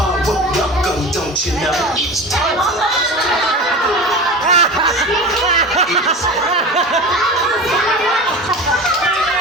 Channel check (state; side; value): normal; both; correlation 0.31